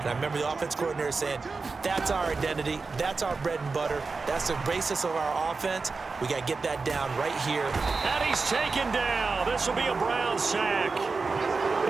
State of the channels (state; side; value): quieter; left; 4.3 dB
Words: I remember the offense coordinator saying, that's our identity, that's our bread and butter, that's the basis of our offense. We got to get that down right here. And he's taken down. This will be a Brown sack.